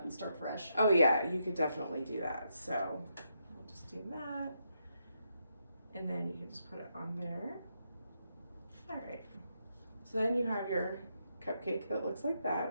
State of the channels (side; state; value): both; inverted; correlation -0.81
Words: and start fresh. Oh yeah, you could definitely do that. So we'll just do that. And then you can just put it on there. All right. So then you have your cupcake that looks like